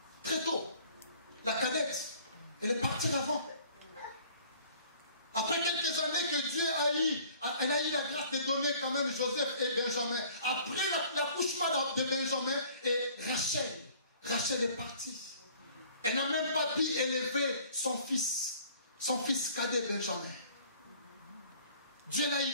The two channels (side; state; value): both; inverted; correlation -0.53